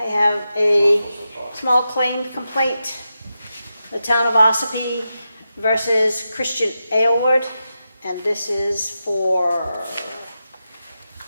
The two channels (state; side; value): inverted; both; correlation -0.89